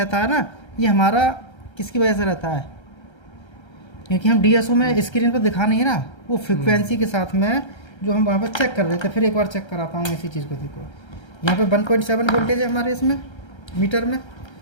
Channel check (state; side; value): late; right; 1.3 ms